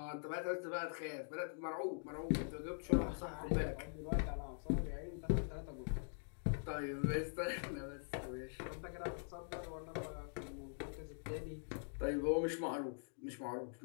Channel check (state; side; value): silent; right; digital silence